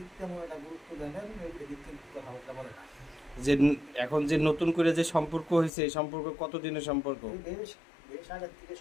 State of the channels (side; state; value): right; drops out; at 5.7 s